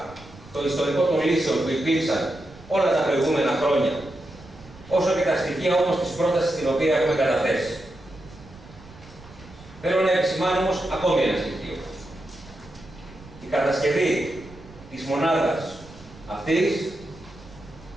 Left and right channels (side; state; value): right; noise; rumble, 20 dB below the sound